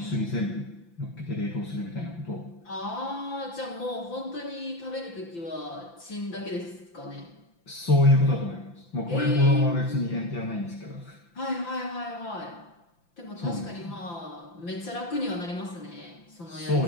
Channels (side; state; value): right; late; 5.9 ms